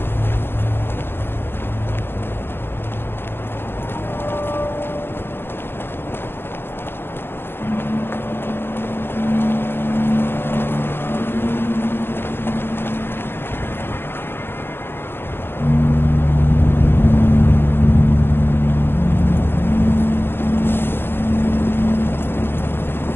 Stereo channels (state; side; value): late; right; 0.11 ms